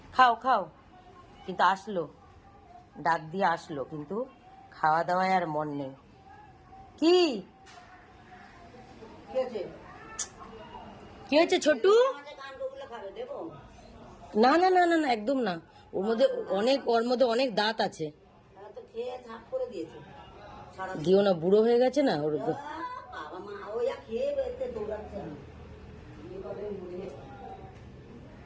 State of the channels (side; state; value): both; identical; correlation 1.00